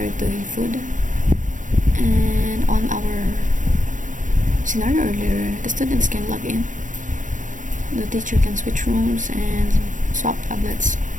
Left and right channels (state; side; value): late; left; 0.37 ms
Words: it to a food. And on our scenario earlier, the students can log in, the teacher can switch rooms and swap tablets,